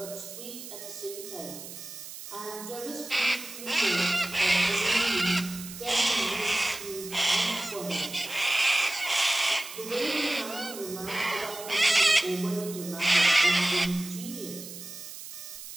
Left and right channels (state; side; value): noise; right; hiss, 12 dB below the sound